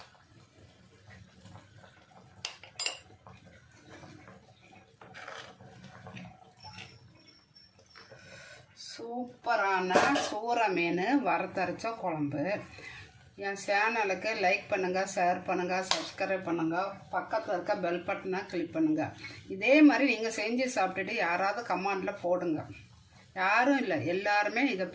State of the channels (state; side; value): identical; both; correlation 1.00